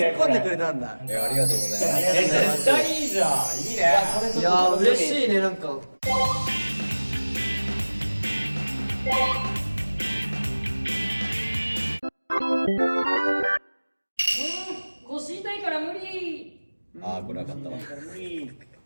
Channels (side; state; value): both; inverted; correlation -1.00